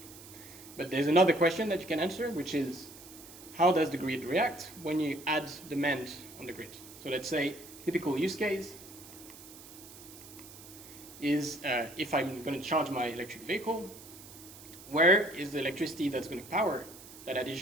But there's another question that you can answer, which is, how does the grid react when you add demand on the grid? So let's say typical use case is if I'm going to charge my electric vehicle, where is the electricity that's going to power that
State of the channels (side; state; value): right; noise; hiss, 17 dB below the sound